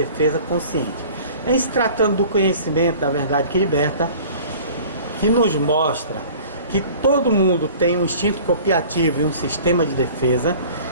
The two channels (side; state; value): both; inverted; correlation -0.46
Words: consciente. Em se tratando do conhecimento da verdade que liberta, que nos mostra que todo mundo tem um instinto copiativo e um sistema de defesa,